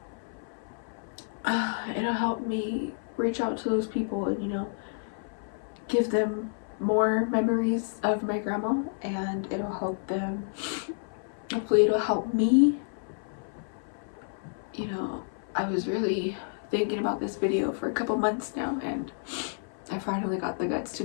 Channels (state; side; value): silent; right; 58 dB below the other